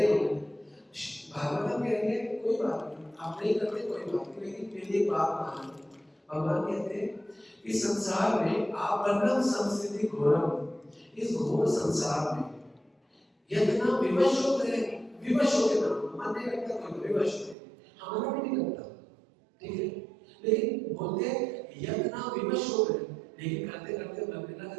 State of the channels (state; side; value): drops out; left; at 17.6 s